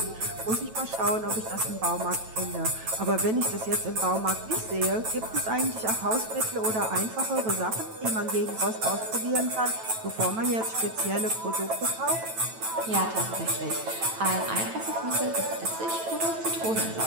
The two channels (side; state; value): left; late; 9.1 ms